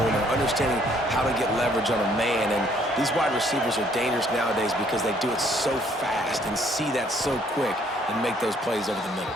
or understanding how to get leverage on a man. And these wide receivers are dangerous nowadays because they do it so fast and see that so quick and make those plays over the middle.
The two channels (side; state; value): both; normal; correlation 0.64